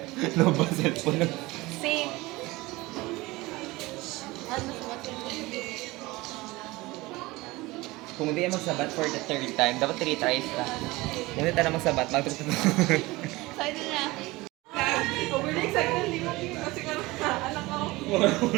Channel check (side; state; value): left; quieter; 21.0 dB